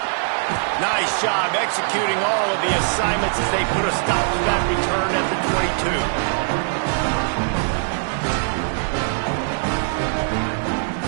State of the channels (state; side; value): silent; left; digital silence